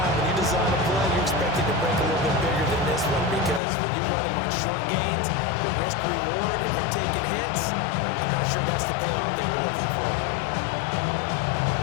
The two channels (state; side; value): drops out; right; at 3.6 s